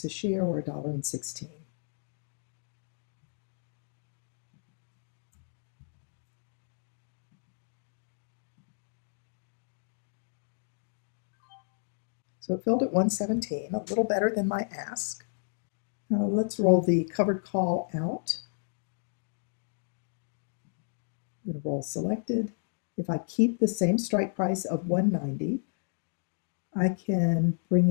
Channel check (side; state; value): right; silent; digital silence